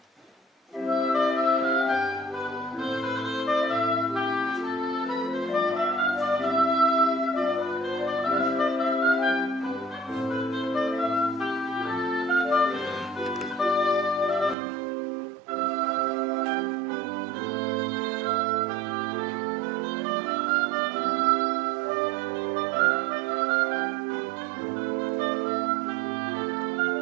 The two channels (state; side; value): drops out; left; at 14.6 s